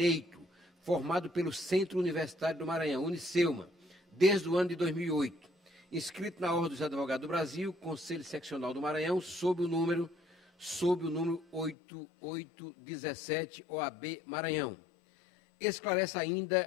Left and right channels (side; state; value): right; drops out; at 11.8 s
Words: formado pelo Centro Universitário do Maranhão, Unicelma, desde o ano de 2008. Inscrito na Ordem dos Advogados do Brasil, Conselho Seccional do Maranhão, sob o número 8817, OAB Maranhão. Esclarece ainda